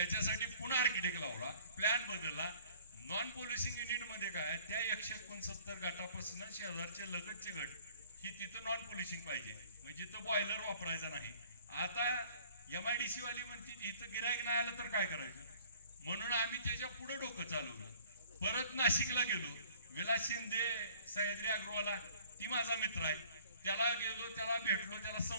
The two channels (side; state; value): both; inverted; correlation -0.54